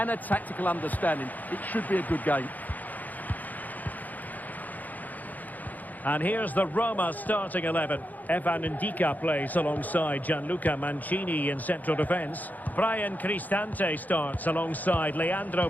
a tactical understanding. It should be a good game. And here's the Roma starting 11. Evan Ndika plays alongside Gianluca Mancini in central defence. Brian Cristante starts alongside Leandro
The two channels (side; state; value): right; late; 0.081 ms